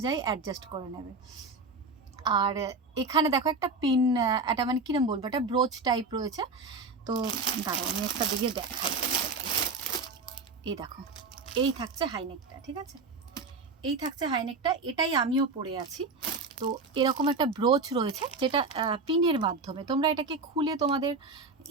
অ্যাডজাস্ট করে নেবে। আর এখানে দেখো একটা পিন, একটা মানে কিরম বলবো, একটা ব্রোচ টাইপ রয়েছে। তো দাঁড়াও আমি একটা দিকে দেখাই। এই দেখো, এই থাকছে হাইনেকটা, ঠিক আছে, এই থাকছে হাইনেকটা, এটাই আমিও পরে আছি। তো এরকম একটা ব্রোচ রয়েছে যেটা পিনের মাধ্যমে তোমরা এটাকে খুলে তোমাদের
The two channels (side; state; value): left; quieter; 3.9 dB